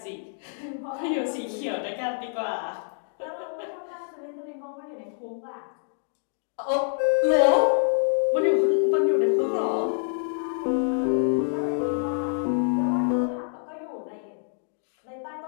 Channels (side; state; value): right; silent; digital silence